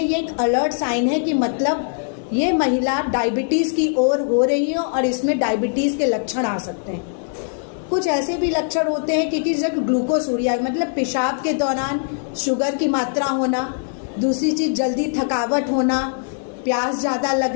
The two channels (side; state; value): right; silent; digital silence